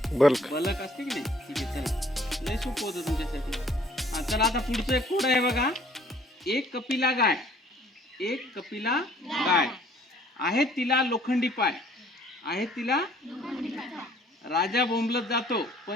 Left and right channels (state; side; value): normal; both; correlation 0.58